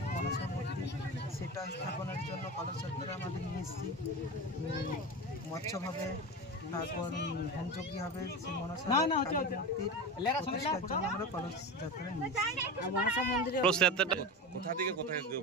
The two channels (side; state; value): both; normal; correlation 0.25